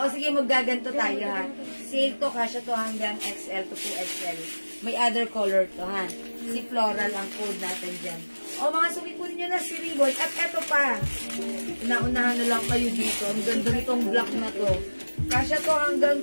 sige, maggaganto tayo, ha. Sale to, kasya to hanggang XL to 2XL. May other color to, ha. Si floral ang code natin dyan. O, mga sumikunin nyo na si ribbon. At eto pa. Naunahan na lang kayo dito. Ang ganda nitong black na to. Kasya to hanggang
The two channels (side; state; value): both; inverted; correlation -1.00